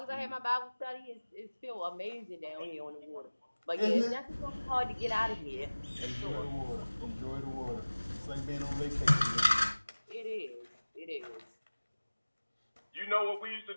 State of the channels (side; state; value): both; inverted; correlation -1.00